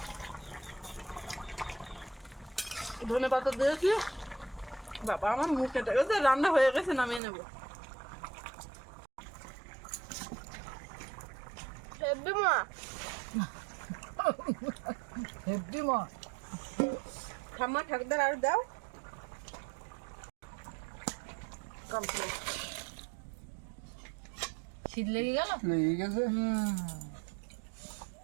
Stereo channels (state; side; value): drops out; left; at 7.2 s